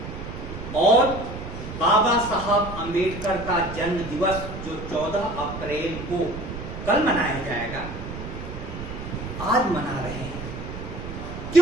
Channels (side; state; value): right; noise; rumble, 9 dB below the sound